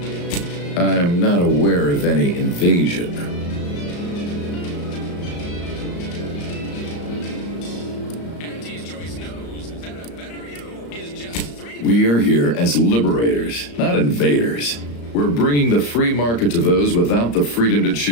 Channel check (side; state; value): right; late; 34 ms